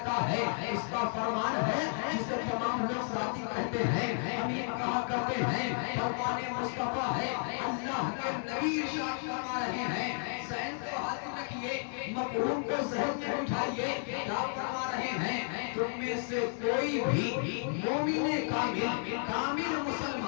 ہے، اس کا فرمان ہے جسے تمام لوگ ساتھی کہتے ہیں، امین کہا کرتے ہیں، فرمان مصطفیٰ ہے۔ اللہ کے نبی ارشاد فرما رہے ہیں، ذہن کو حاضر رکھیے، مفہوم کو ذہن میں اٹھائیے، کیا فرما رہے ہیں تم میں سے کوئی بھی مومن کامل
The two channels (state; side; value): silent; right; 56 dB below the other